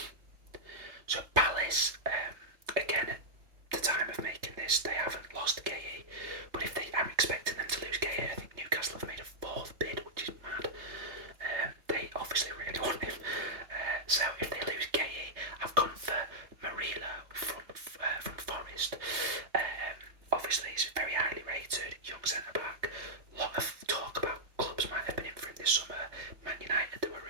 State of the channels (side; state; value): left; late; 3.3 ms